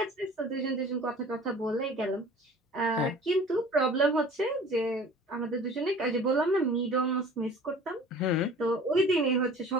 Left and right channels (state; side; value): normal; both; correlation 0.45